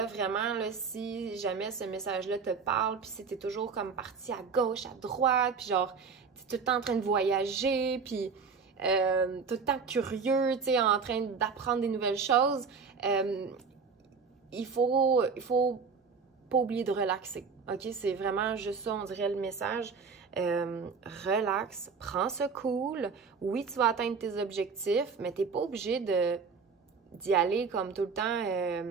vraiment, là, si jamais ce message-là te parle, puis si t'es toujours comme parti à gauche, à droite, puis genre, t'es tout le temps en train de voyager, puis tout le temps curieux, tu sais, en train d'apprendre des nouvelles choses, il faut pas oublier de relaxer, OK? C'est vraiment juste ça, on dirait le message. Relax, prends ça cool. Oui, tu vas atteindre tes objectifs, mais t'es pas obligé d'y aller comme tout le temps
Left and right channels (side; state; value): left; quieter; 5.4 dB